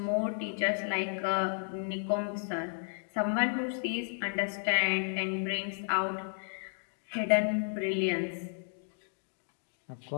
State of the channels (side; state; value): right; silent; digital silence